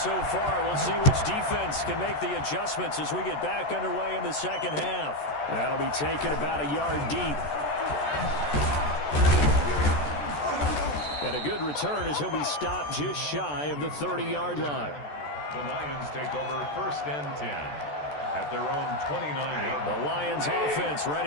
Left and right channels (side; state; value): right; late; 14 ms